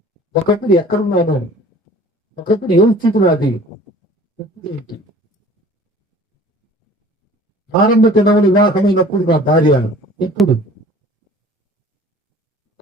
ఒకప్పుడు ఎక్కడున్నాను, ఒకప్పుడు ఏ స్థితి నాది, ఏంటి. ఆరంభ దినములు వివాహమైనప్పుడు నా భార్య ఎప్పుడు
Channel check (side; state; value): both; normal; correlation 0.48